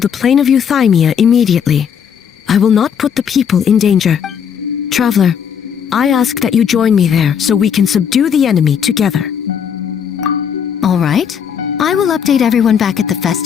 plane of Euthymia immediately. I will not put the people in danger. Traveler, I ask that you join me there so we can subdue the enemy together. All right. I will update everyone back at the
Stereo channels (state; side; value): quieter; right; 7.7 dB